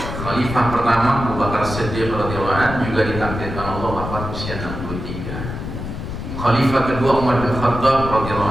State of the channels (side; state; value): left; noise; rumble, 7 dB below the sound